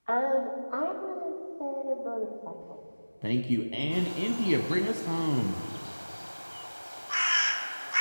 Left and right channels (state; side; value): inverted; both; correlation -1.00